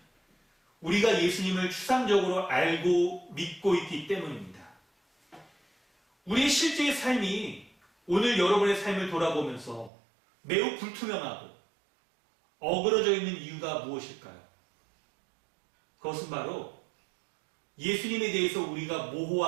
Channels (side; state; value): left; drops out; at 9.9 s